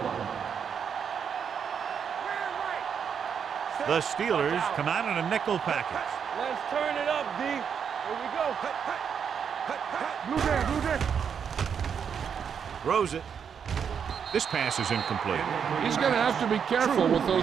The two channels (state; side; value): quieter; left; 7.3 dB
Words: line. The Steelers come out in a nickel package. Let's turn it up, D. Here we go. Blue there, blue there. Throws it. This pass is incomplete. He's going to have to be careful with